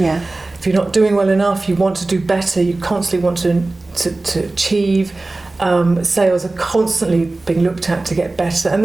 If you're not doing well enough, you want to do better, you constantly want to achieve. Sales are constantly being looked at to get better. And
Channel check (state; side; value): quieter; left; 3.1 dB